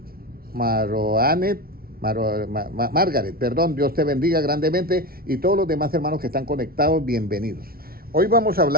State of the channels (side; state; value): left; late; 0.44 ms